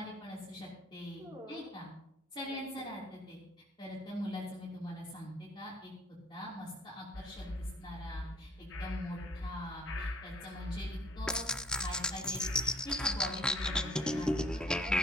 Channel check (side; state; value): both; normal; correlation 0.57